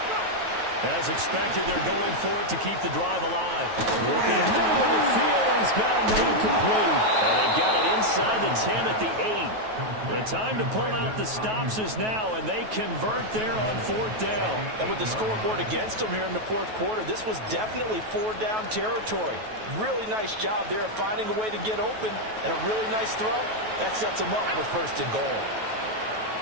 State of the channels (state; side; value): late; left; 9.3 ms